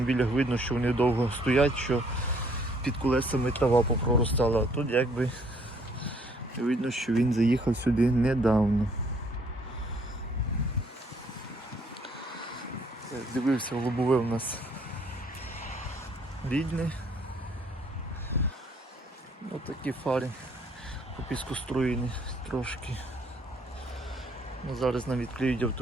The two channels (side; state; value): both; normal; correlation 0.64